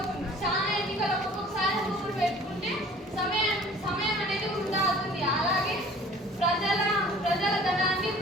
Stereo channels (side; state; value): both; normal; correlation 0.49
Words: చాలా ఎన్నికలు ఒక్కొక్కసారి ఊరు పెట్టుకుంటే సమయం అనేది వృధా అవుతుంది. అలాగే ప్రజల ధనాన్ని